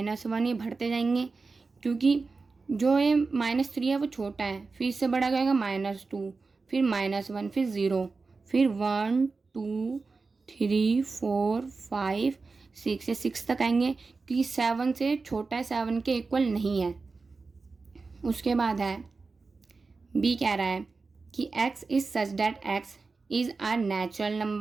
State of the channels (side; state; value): left; quieter; 4.1 dB